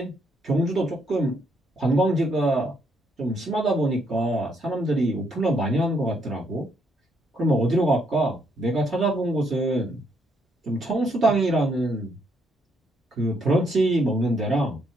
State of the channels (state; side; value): normal; both; correlation 0.73